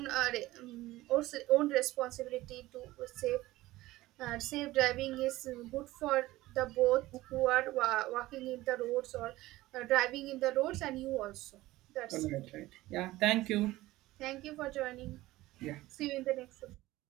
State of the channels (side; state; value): left; quieter; 17.7 dB